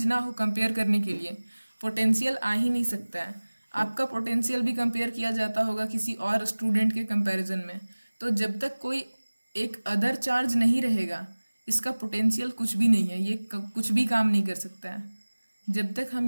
ना हो कंपेयर करने के लिए पोटेंशियल आ ही नहीं सकता है। आपका पोटेंशियल भी कंपेयर किया जाता होगा किसी और स्टूडेंट के कंपैरिजन में, तो जब तक कोई एक अदर चार्ज नहीं रहेगा इसका पोटेंशियल कुछ भी नहीं है, ये कुछ भी काम नहीं कर सकता है। जब तक हम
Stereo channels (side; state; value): both; inverted; correlation -1.00